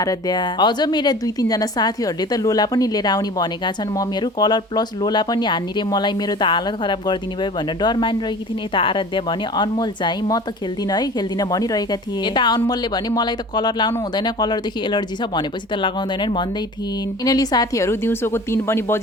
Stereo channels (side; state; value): both; normal; correlation 0.41